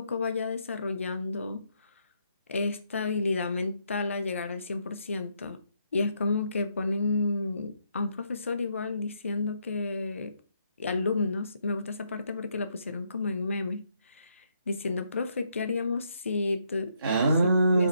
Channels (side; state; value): both; inverted; correlation -0.75